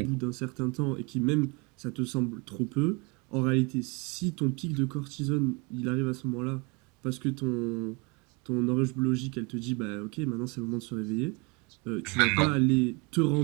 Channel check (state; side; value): quieter; left; 29.7 dB